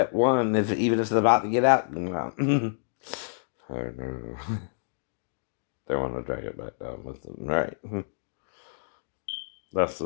one, even if it's about to get out. I know. They want to drag it back down with them, right? That's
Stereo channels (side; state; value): right; silent; digital silence